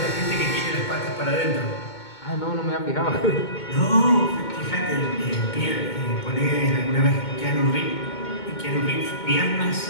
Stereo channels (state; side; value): late; right; 2.2 ms